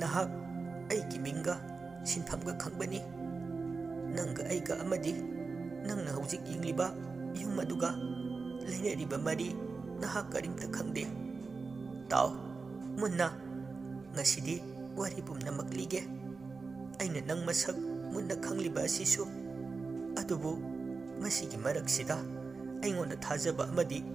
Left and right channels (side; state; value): left; quieter; 4.4 dB